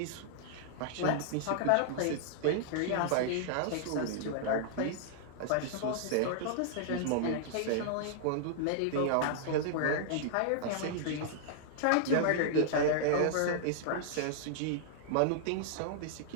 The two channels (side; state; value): both; different; correlation -0.01